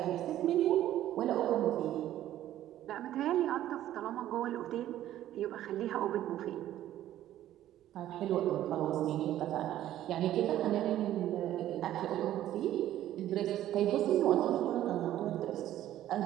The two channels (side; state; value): left; quieter; 12.8 dB